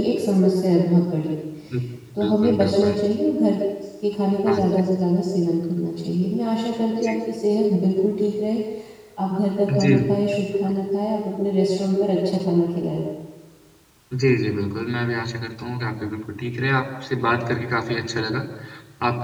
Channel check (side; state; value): both; identical; correlation 1.00